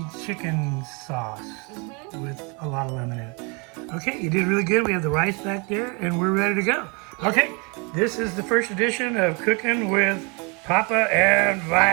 chicken sauce with a lot of lemon in it. Okay, you did really good. We have the rice back there, and we're ready to go. Okay, this is the first edition of Cooking with Papa and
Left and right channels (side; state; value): left; quieter; 31.4 dB